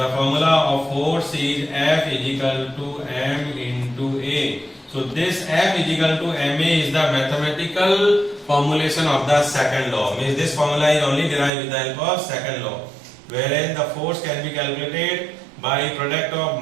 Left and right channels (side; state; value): left; drops out; at 11.5 s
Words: formula of force is F is equal to m into A. So this F is equal to ma is the mathematical formulation of the second law. Means this formula is only derived with the help of second law, wherein the force can be calculated by product